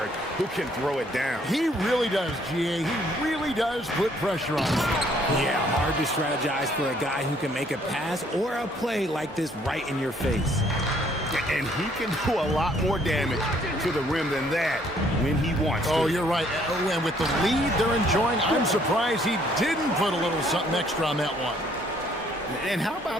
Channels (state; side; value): normal; both; correlation 0.64